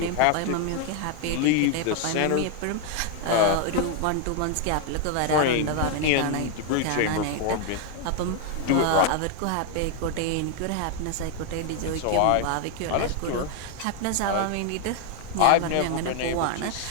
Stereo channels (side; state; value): both; different; correlation 0.00